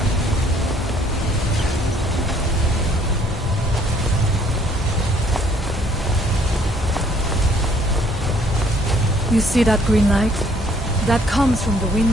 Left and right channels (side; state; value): both; normal; correlation 0.62